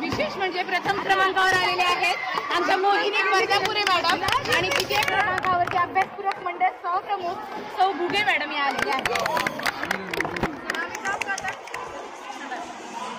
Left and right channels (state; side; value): identical; both; correlation 1.00